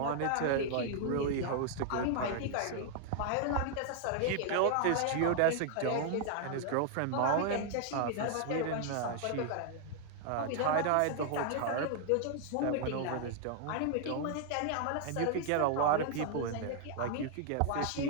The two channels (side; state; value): both; different; correlation 0.00